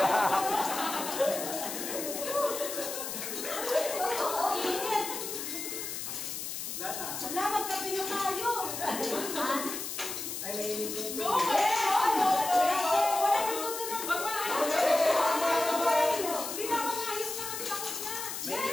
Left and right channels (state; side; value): noise; left; hiss, 5 dB below the sound